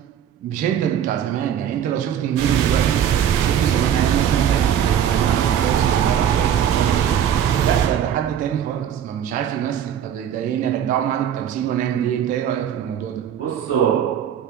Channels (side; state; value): left; quieter; 9.5 dB